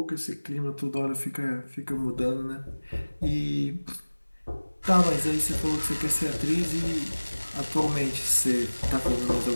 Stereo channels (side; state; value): both; inverted; correlation -1.00